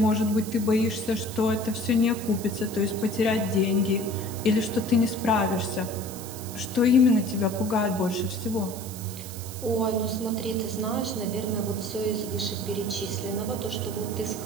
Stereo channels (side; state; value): right; noise; hiss, 12 dB below the sound